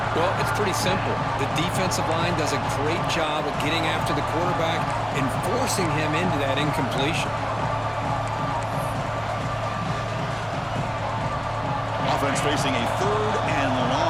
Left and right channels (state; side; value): identical; both; correlation 1.00